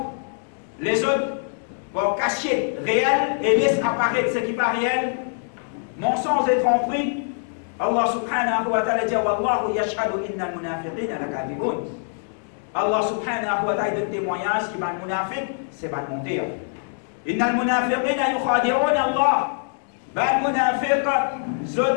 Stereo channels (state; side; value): silent; right; 63 dB below the other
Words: les autres pour cacher réel et laisser apparaître ce qui n'est pas réel. Mensonge et tromperie. Allah subhanahu wa ta'ala dit Wallahu yashhadu inna al-munafiqina lakadibun. Allah subhanahu wa ta'ala donne témoignage qui va le munafiq, c'est pas mentir. Inna al-munafiqina yukhadi'un Allah. Ben munafiq,